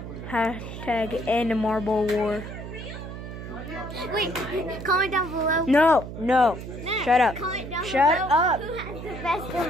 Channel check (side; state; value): right; noise; hum, 10 dB below the sound